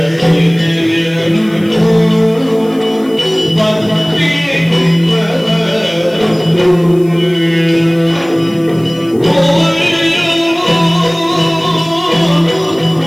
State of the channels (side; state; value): left; noise; hiss, 26 dB below the sound